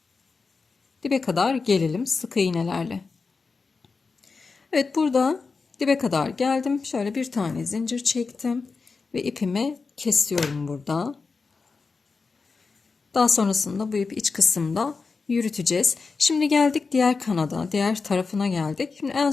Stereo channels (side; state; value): right; quieter; 4.5 dB